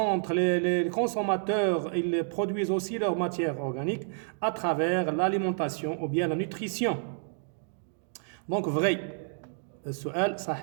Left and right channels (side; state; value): left; silent; digital silence